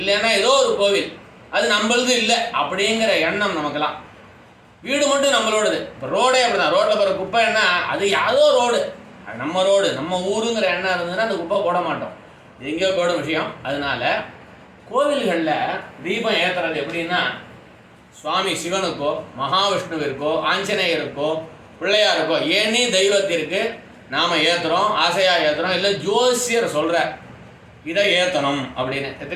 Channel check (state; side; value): identical; both; correlation 1.00